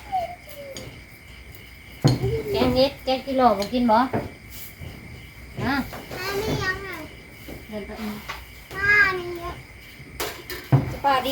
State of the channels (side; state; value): both; identical; correlation 1.00